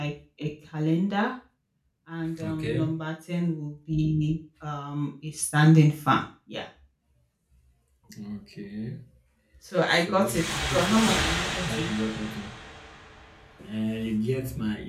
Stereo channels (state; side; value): identical; both; correlation 1.00